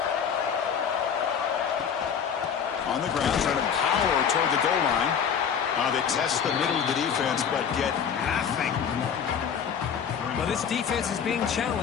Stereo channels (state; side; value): quieter; right; 7.5 dB